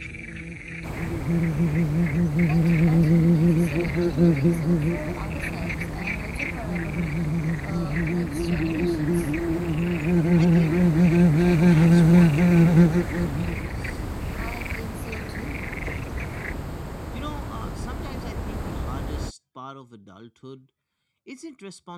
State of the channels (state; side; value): identical; both; correlation 1.00